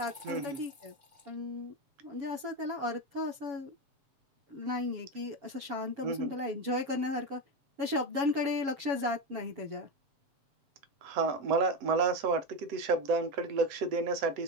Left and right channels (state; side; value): late; left; 7.2 ms